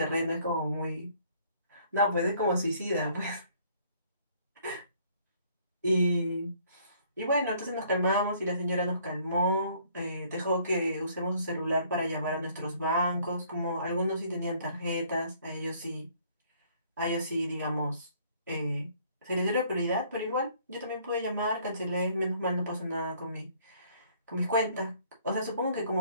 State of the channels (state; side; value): inverted; both; correlation -0.61